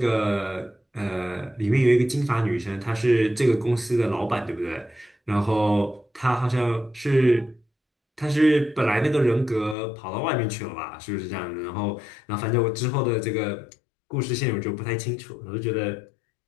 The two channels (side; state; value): right; drops out; at 9.8 s